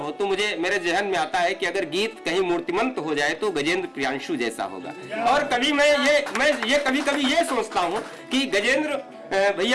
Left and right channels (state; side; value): identical; both; correlation 1.00